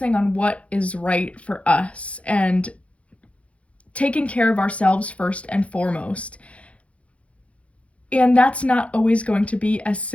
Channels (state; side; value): late; right; 0.063 ms